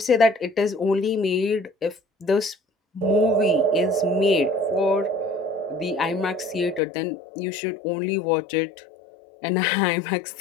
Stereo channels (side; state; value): right; drops out; at 6.8 s